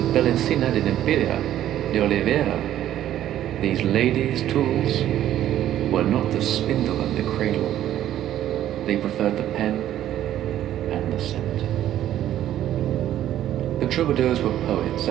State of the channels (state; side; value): quieter; left; 12.1 dB